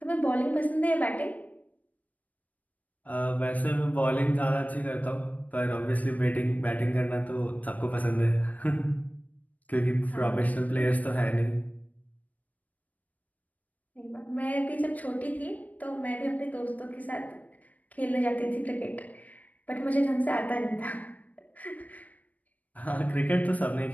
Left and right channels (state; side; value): late; right; 0.074 ms